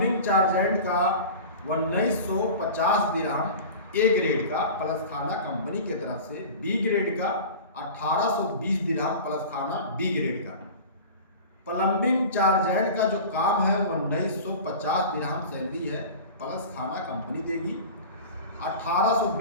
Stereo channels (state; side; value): inverted; both; correlation -0.36